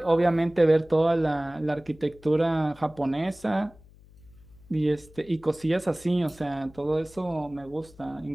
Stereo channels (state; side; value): noise; left; hum, 24 dB below the sound